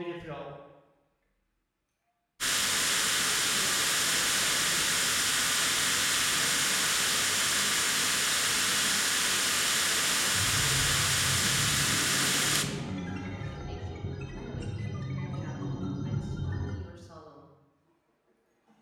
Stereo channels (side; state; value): both; identical; correlation 1.00